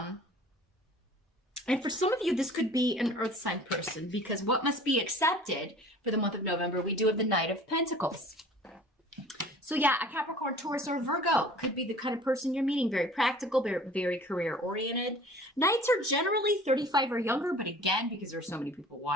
And for some of you, this could be an earth sign person, because what must be accepted for the month of November, we do have the Knight of Pentacles. So yeah, a Capricorn, Taurus, or Virgo could be the kind of person you're meeting. Very practical, very career oriented. Knights are generally 35 or younger, but again, because there's so many people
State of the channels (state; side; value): normal; both; correlation 0.46